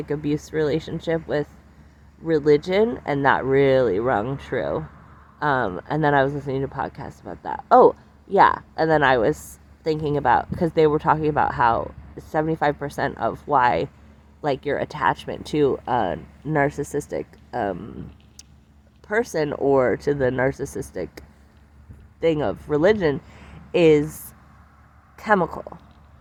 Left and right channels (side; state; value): both; identical; correlation 1.00